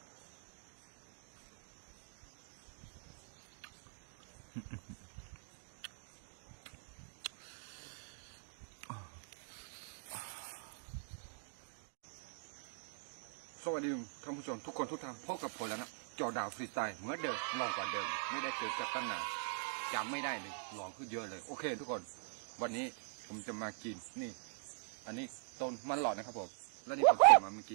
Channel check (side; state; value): left; silent; digital silence